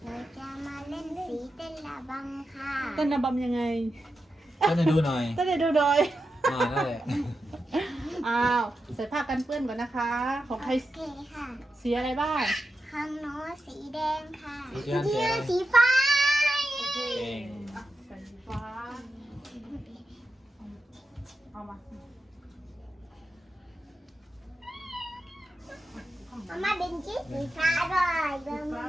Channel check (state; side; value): normal; both; correlation 0.89